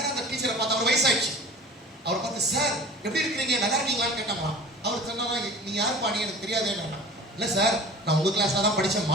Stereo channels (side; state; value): both; normal; correlation 0.41